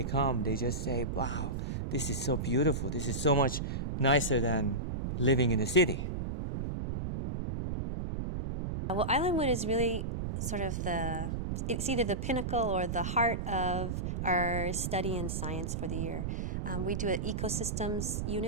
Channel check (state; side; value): noise; right; rumble, 2 dB below the sound